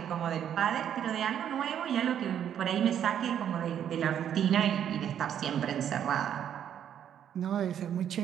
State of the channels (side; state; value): left; quieter; 9.5 dB